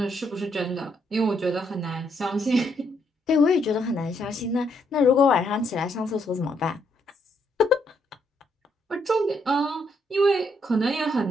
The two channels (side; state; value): both; normal; correlation 0.74